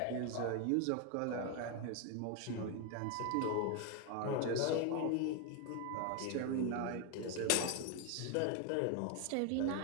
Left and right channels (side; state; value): both; different; correlation 0.01